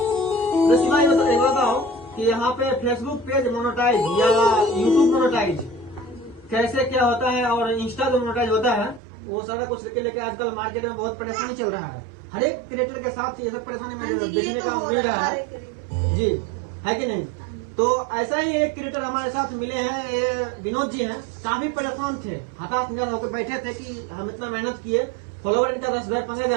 शिवाजी बताओ कि यहाँ पे फेसबुक पेज मोनेटाइज या यूट्यूब मोनेटाइज कैसे क्या होता है और इंस्टा जो मोनेटाइज होता है वो सारा कुछ लेके आजकल मार्केट में बहुत परेशानी चल रहा है। हर एक क्रिएटर के साथ ये सब परेशानी में देखने का मिल रहा है जी, है कि नहीं? तो ऐसा ही एक क्रिएटर हमारे साथ मिले हैं, ये विनोद जी हैं। काफी परेशान थे, हताश निराश होकर बैठे थे कि हम इतना मेहनत किए, फॉलोवर इनका 10,000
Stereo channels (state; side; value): drops out; left; at 9.0 s